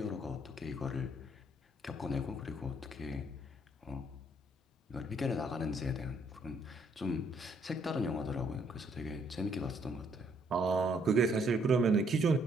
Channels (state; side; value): normal; both; correlation 0.68